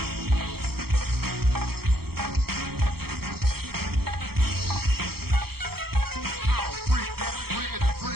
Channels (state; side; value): late; left; 0.95 ms